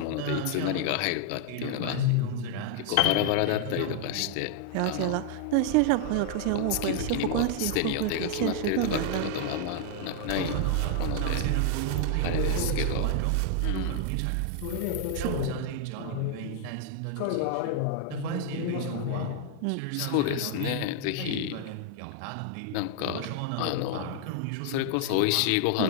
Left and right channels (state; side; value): different; both; correlation 0.00